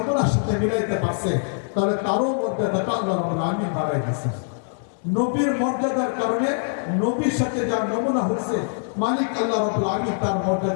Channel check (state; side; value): silent; right; digital silence